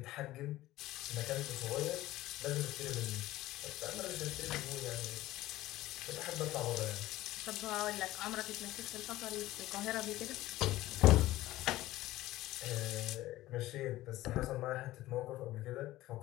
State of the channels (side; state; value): right; quieter; 16.3 dB